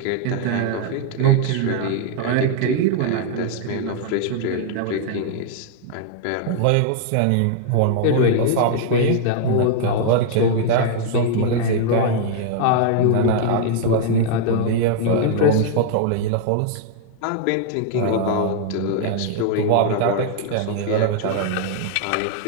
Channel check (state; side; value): different; both; correlation -0.01